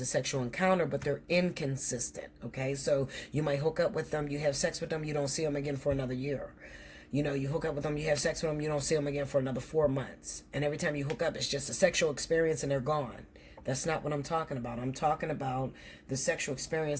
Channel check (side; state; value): both; identical; correlation 1.00